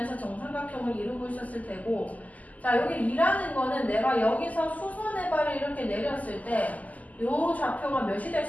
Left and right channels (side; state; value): right; late; 0.076 ms